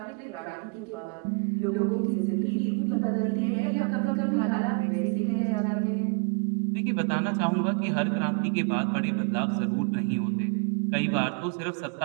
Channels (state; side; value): quieter; left; 32.8 dB